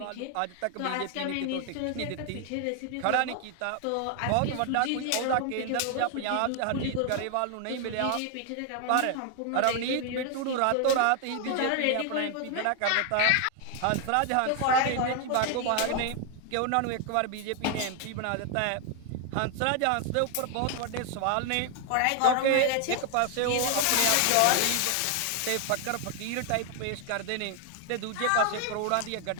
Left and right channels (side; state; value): both; different; correlation 0.00